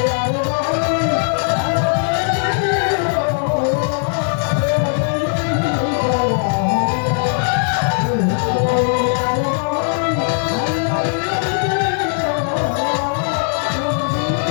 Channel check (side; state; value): right; silent; digital silence